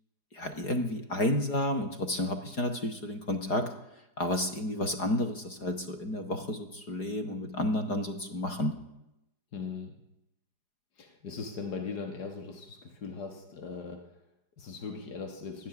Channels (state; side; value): late; right; 4.9 ms